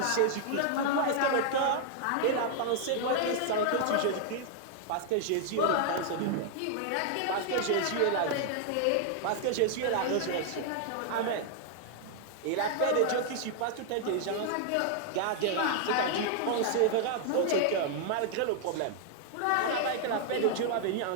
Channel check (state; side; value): different; both; correlation 0.00